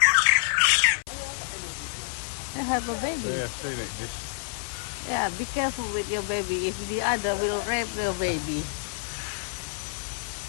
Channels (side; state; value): right; silent; 60 dB below the other